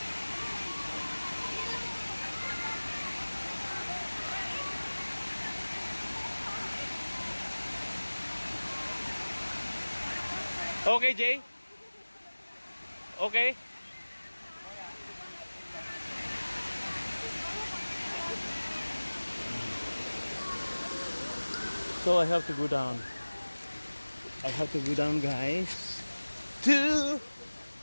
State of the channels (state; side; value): inverted; both; correlation -1.00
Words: Okay, Jay? Okay? So I have to go down. Guys.